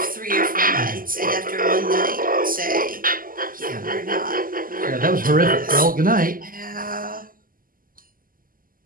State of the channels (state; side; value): late; left; 0.41 ms